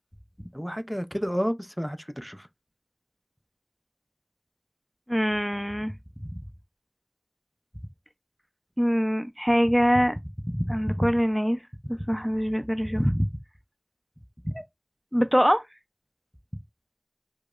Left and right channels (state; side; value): identical; both; correlation 1.00